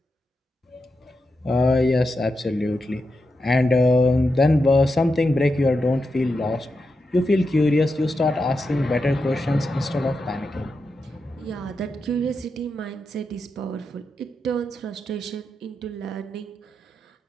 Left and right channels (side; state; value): both; normal; correlation 0.87